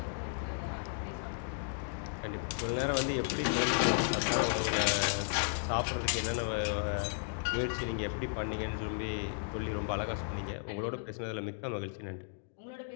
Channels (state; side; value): silent; right; digital silence